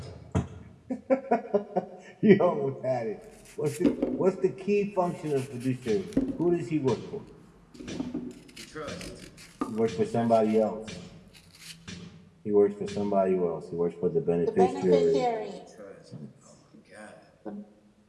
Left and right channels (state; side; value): identical; both; correlation 1.00